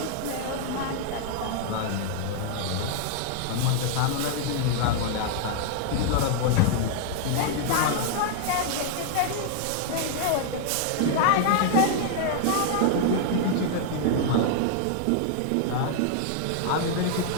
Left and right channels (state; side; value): different; both; correlation -0.01